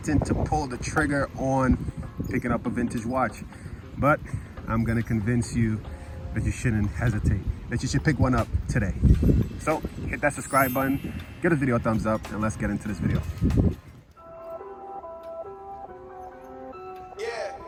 to pull the trigger on picking up a vintage watch, but I'm going to convince you that you shouldn't hesitate, that you should pick one up today. So hit that subscribe button, give the video a thumbs up, and let's get into this video.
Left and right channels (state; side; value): identical; both; correlation 1.00